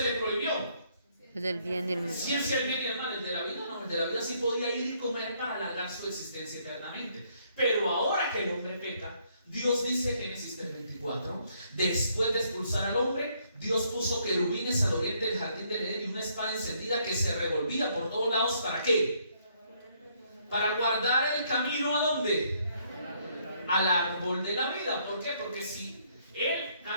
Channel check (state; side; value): inverted; both; correlation -0.69